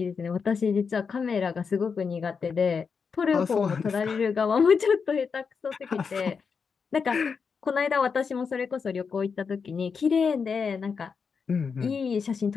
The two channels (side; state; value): right; quieter; 5.7 dB